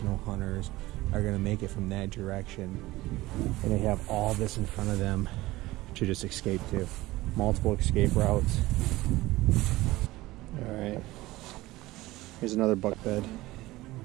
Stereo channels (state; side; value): quieter; left; 18.6 dB